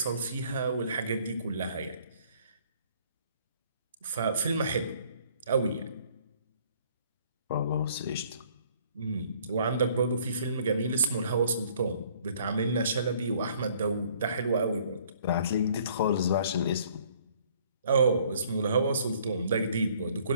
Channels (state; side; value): inverted; both; correlation -0.59